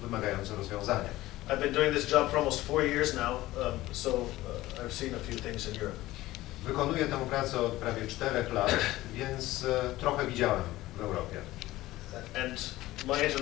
wymagający rozwiązania. I've been doing this job for almost 4 years now, so I've seen a few things in Europe. Wykonuję tę pracę od prawie 4 lat, więc trochę widziałem w Europie. And my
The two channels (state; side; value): quieter; right; 17.0 dB